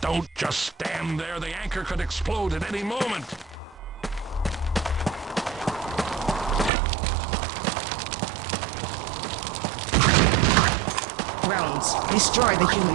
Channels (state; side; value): drops out; left; at 6.7 s